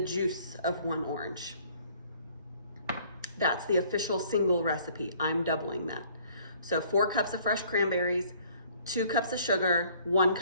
of 1 orange. That's the official single recipe. I'm doubling that. So 4 cups of fresh cranberries, 2 cups of sugar, 1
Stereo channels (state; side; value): inverted; both; correlation -0.58